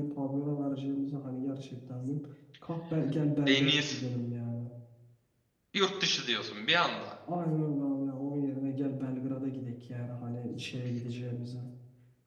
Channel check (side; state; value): both; identical; correlation 1.00